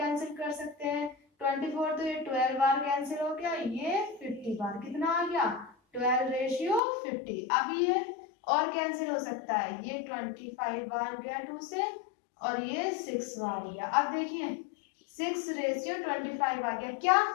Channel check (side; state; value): right; drops out; at 6.8 s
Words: कर सकते हैं। 24 तो ये 12 बार कैंसिल हो गया, ये 50 बार, कितना आ गया 12:50। अब ये और कैंसिल हो सकता है, ये 25 बार गया 2 से और ये 6 बार गया। अब देखिए 6:25 आ गया। क्या